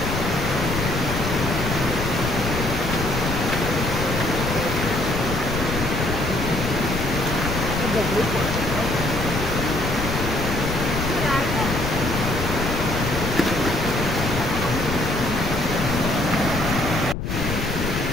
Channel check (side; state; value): left; noise; rumble, 3 dB below the sound